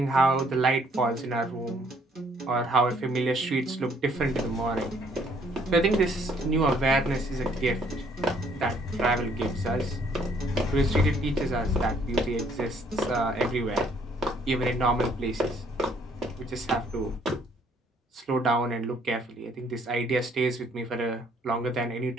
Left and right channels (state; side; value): normal; both; correlation 0.64